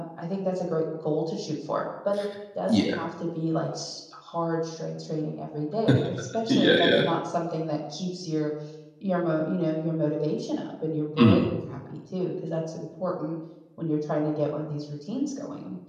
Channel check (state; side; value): identical; both; correlation 1.00